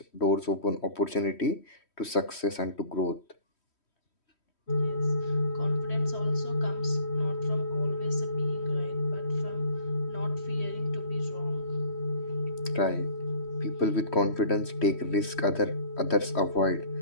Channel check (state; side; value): late; right; 3.1 ms